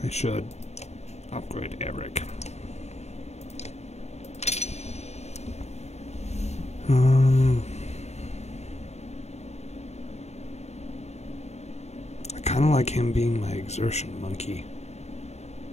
I should upgrade Eric. I kind of like him being my exertion monkey.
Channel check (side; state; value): right; late; 0.32 ms